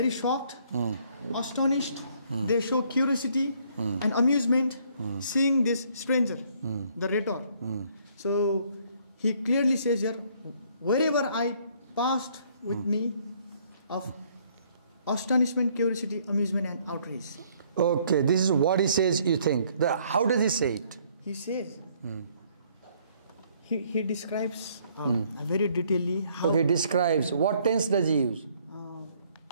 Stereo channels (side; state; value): both; inverted; correlation -0.64